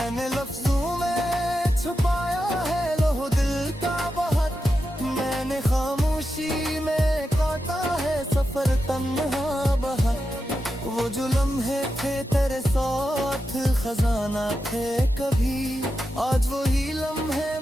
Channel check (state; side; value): normal; both; correlation 0.89